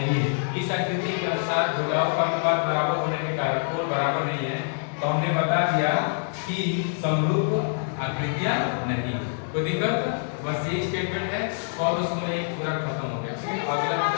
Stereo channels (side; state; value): right; silent; digital silence